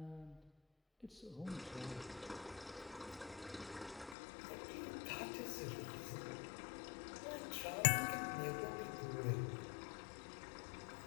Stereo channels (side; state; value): right; drops out; at 4.2 s